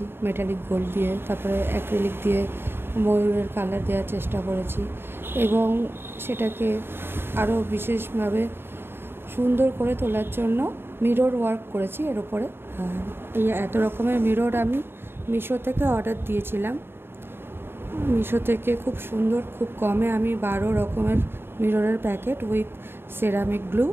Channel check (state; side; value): late; left; 0.11 ms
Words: মেটালিক গোল্ড দিয়ে, তারপরে অ্যাক্রিলিক দিয়ে ময়ূরের কালার দেওয়ার চেষ্টা করেছি এবং সেটাকে আরও বিশেষভাবে সুন্দর করে তোলার জন্য মিরর ওয়ার্ক করেছি এর ওপরে। আর এই এত রকমের মিরর আমি মিশো থেকে অর্ডার দিয়েছিলাম। মিশো থেকে খুব সুন্দর, খুব কমে আমি 12 রকমের মিররের প্যাকেট উইথ সেরামিক গ্লু